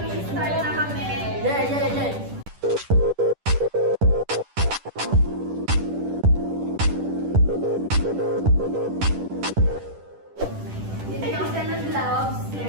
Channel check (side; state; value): left; late; 10 ms